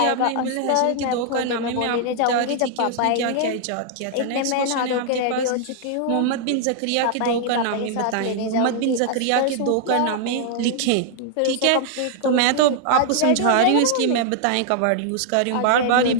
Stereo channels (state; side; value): different; both; correlation -0.01